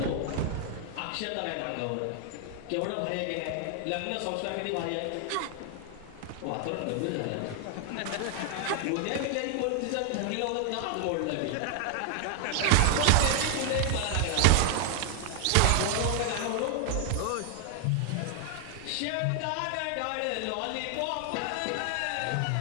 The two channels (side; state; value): both; different; correlation 0.00